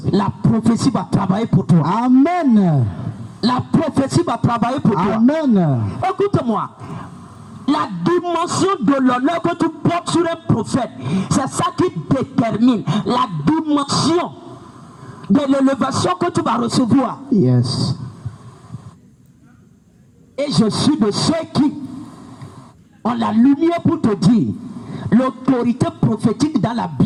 va travailler pour toi. Amen. La prophétie va travailler pour toi. Amen. Écoute-moi. La dimension de l'honneur que tu portes sur un prophète, c'est ça qui détermine la dimension de l'élévation que tu vas recevoir. Yes. Et je suis de ceux qui ont la lumière pour te dire, l'autorité prophétique dans la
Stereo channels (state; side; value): identical; both; correlation 1.00